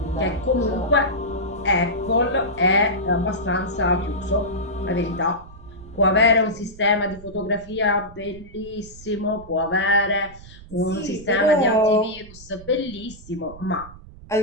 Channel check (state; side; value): noise; right; rumble, 18 dB below the sound